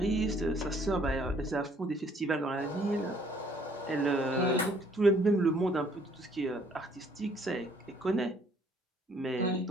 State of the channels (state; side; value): normal; both; correlation 0.62